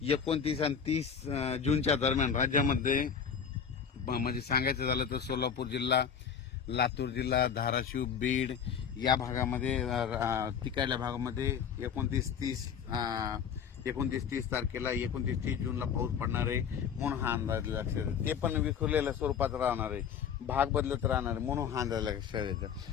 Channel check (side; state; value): right; quieter; 7.4 dB